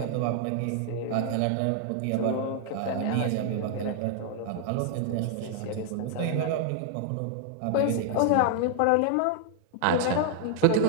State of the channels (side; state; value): both; different; correlation 0.00